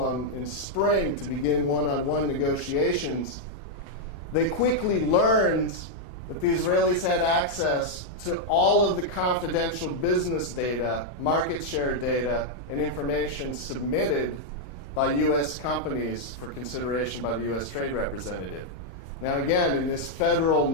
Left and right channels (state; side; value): late; right; 38 ms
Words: in spring to begin one-on-one negotiations, they quickly learned that the Israelis had access to all of the confidential business data, market share data, and information submitted by U.S. companies for consideration by the U.S. Trade Representative. Now again, in this federal